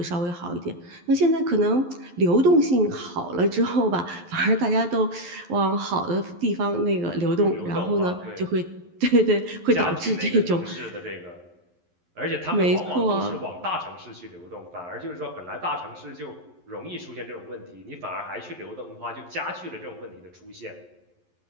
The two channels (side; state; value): left; late; 11 ms